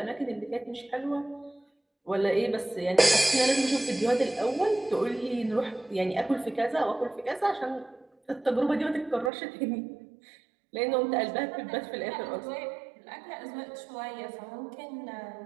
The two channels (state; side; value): drops out; left; at 9.3 s